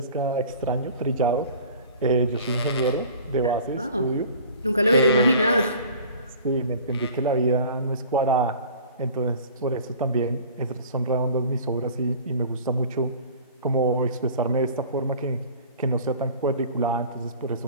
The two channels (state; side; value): inverted; both; correlation -0.45